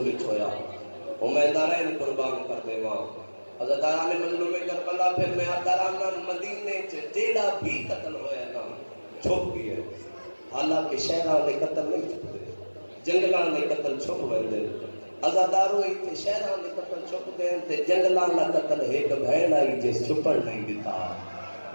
چھویا. امیدارین قربان کر دے ماں. حضرت آرام مظلوم کربلا پھر میں آدھارانا مدینے جیڑا بھی قتل ہویا نا چھوپ گیا. حالانکہ شہران نے قتل نہیں چھپ دے، جنگلان نے قتل چھپ ویندے. ازادارو ایتھے شہران نے قتل چھپ دے تے جنگلان نے قتل ایک بہن آئی جس چھپڑ نہیں دیتا.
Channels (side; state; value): both; inverted; correlation -1.00